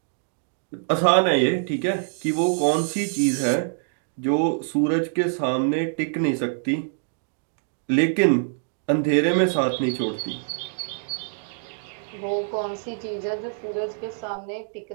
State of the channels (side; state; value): left; silent; digital silence